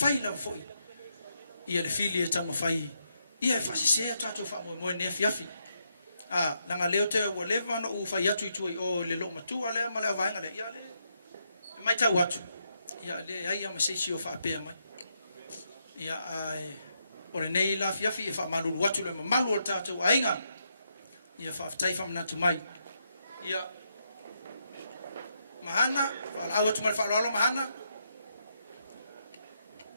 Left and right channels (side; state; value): both; inverted; correlation -0.80